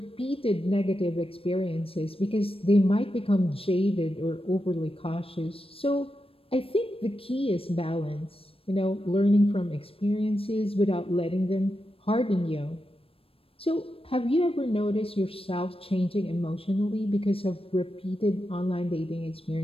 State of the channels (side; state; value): right; late; 0.27 ms